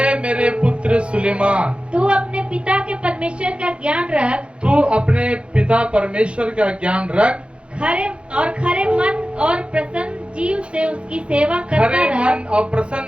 मेरे पुत्र सुलेमान, तू अपने पिता के परमेश्वर का ज्ञान रख, तू अपने पिता परमेश्वर का ज्ञान रख, खरे मन और प्रसन्न जीव से उसकी सेवा करता खरे रह, मन और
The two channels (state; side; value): late; left; 0.059 ms